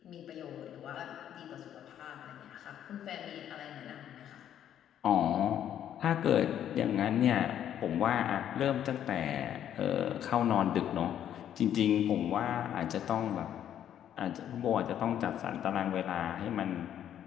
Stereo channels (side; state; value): right; quieter; 10.3 dB